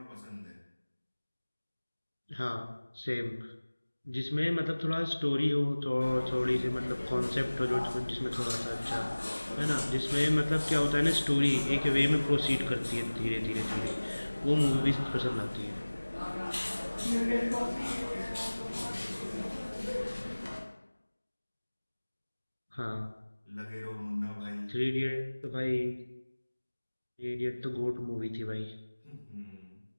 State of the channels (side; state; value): both; inverted; correlation -1.00